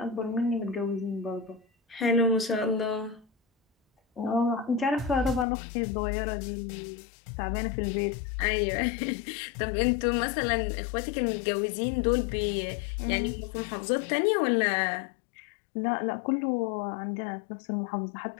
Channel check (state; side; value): drops out; right; at 5.5 s